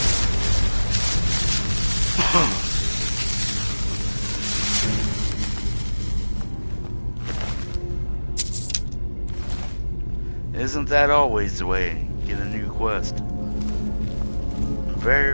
Isn't that always the way? Get a new quest. Very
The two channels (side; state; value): both; inverted; correlation -1.00